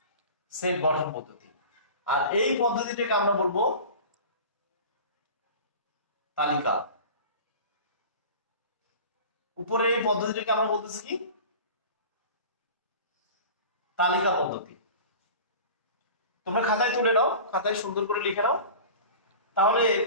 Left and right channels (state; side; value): inverted; both; correlation -0.37